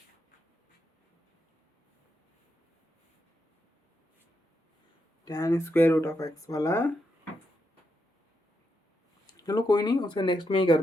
tan square root of x वाला, चलो कोई नहीं, उसे नेक्स्ट में ही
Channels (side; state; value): both; normal; correlation 0.83